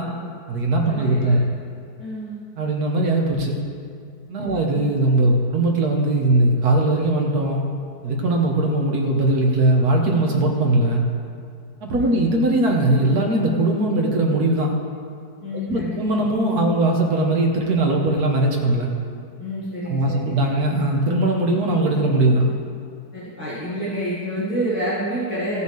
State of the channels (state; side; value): late; left; 4.6 ms